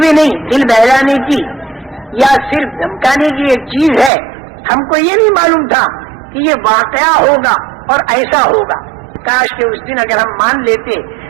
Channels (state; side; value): drops out; left; at 4.1 s